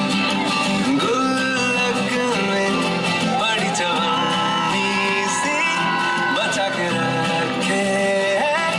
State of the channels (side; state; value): both; identical; correlation 1.00